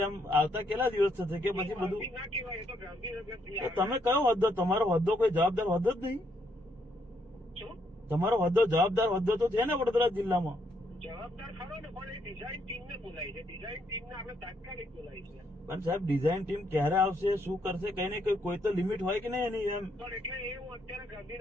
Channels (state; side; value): normal; both; correlation 0.74